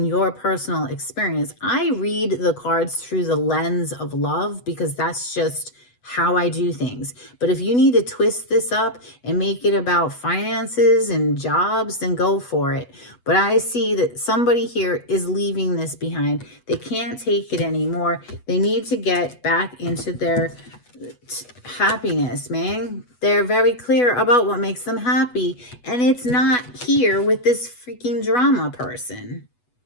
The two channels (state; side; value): late; right; 8.2 ms